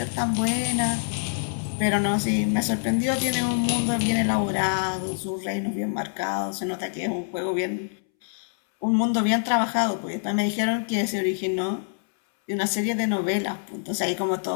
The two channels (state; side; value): silent; right; 61 dB below the other